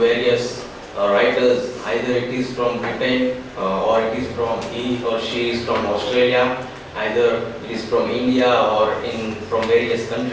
writers, either it is from Britain or it is from he or she is from Australia, either it is from India or from various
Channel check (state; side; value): identical; both; correlation 1.00